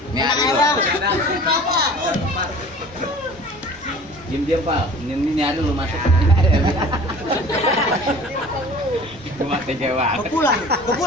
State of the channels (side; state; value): both; normal; correlation 0.44